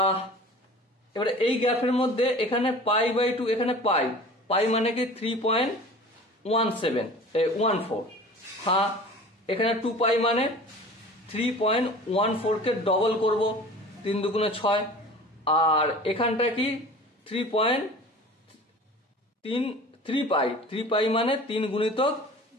এবারে এই গ্রাফের মধ্যে এখানে পাই বাই 2, এখানে পাই, পাই মানে কি 3.14, হ্যাঁ, এখানে 2 পাই মানে 3.14 কে ডবল করব, 3 দুগুণে 6, আর এখানটা কি 3 পাই, 3 পাই মানে 3 গুণিতক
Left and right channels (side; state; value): both; normal; correlation 0.41